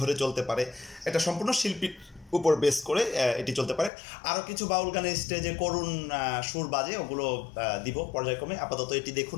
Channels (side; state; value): right; drops out; at 3.9 s